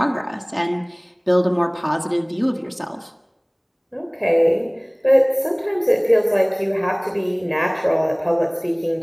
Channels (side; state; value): both; identical; correlation 1.00